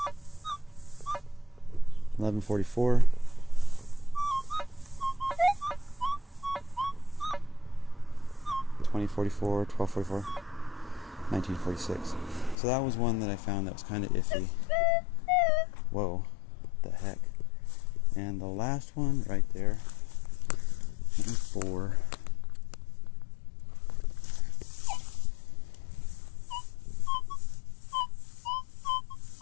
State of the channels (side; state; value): right; drops out; at 12.6 s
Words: 1144, 2044, 1244, 1946. So that was one that I found that was kind of iffy. Whoa, what the heck. And the last one right there, 4.